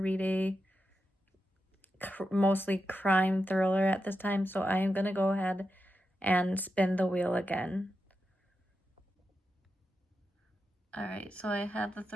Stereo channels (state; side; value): normal; both; correlation 0.88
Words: a mostly crime thriller at this time, so I am going to go ahead and spin the wheel again. Alright, so I have the